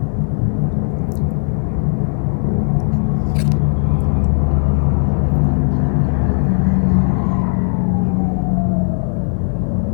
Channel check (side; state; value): right; silent; digital silence